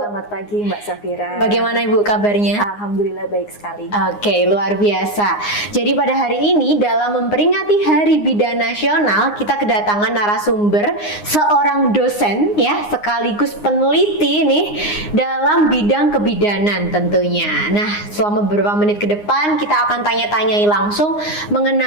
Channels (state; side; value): late; right; 9.7 ms